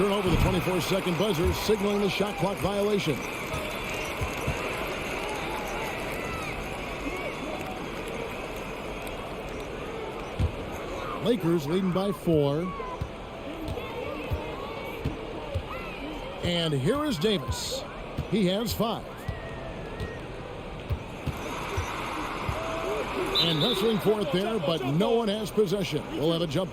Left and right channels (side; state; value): both; identical; correlation 1.00